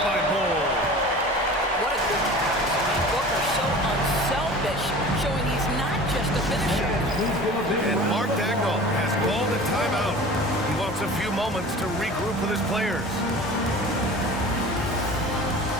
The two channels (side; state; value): both; normal; correlation 0.39